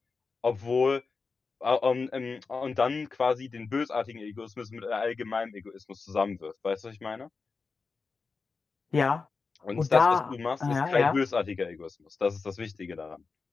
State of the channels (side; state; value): right; quieter; 4.6 dB